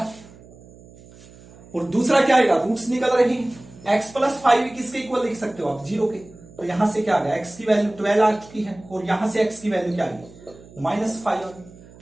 और दूसरा क्या आएगा, रूट्स निकल रही है, x प्लस 5 किसके इक्वल लिख सकते हो आप 0 के, तो यहां से क्या आ गया x की वैल्यू 12 आ चुकी है, और यहां से x की वैल्यू क्या आएगी माइनस 5,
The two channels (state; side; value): noise; right; hum, 22 dB below the sound